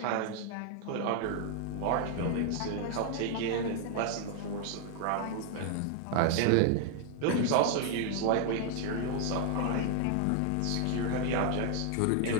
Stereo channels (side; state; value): both; different; correlation 0.00